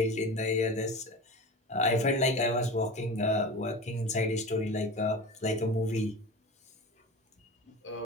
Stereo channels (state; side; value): normal; both; correlation 0.31